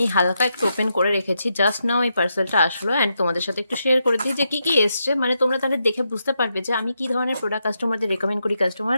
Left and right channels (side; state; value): both; inverted; correlation -0.83